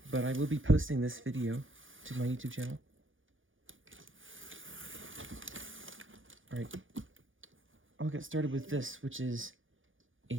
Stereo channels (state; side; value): late; left; 0.58 ms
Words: but I will be posting this video to my YouTube channel. Alright, I'll get started with this, which is a